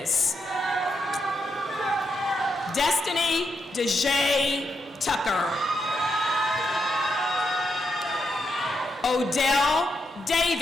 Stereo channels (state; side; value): normal; both; correlation 0.82